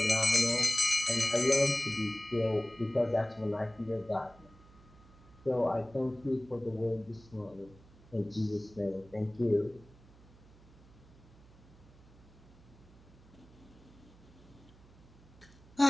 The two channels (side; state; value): right; noise; hum, 24 dB below the sound